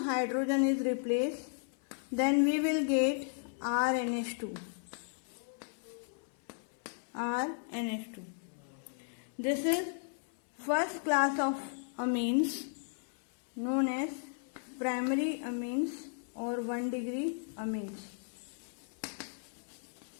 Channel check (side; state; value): right; silent; 54 dB below the other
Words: then we will get RNH2. This is first class of amines known as primary amines or 1 degree amines.